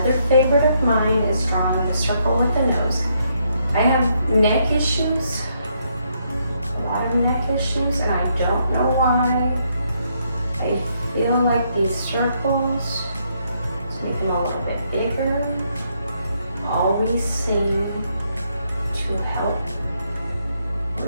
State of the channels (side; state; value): both; inverted; correlation -0.75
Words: favorite of mine is drawing a circle with the nose. I have neck issues, a lot of neck issues, and I don't know why. I feel like these circles, let's make them a little bit bigger, always seem to help